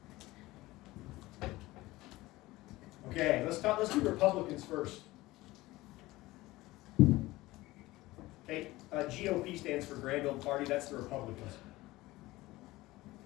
Okay, let's do Republicans first. Okay, GOP stands for Grand Old Party. That's the Republicans.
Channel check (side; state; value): right; quieter; 18.9 dB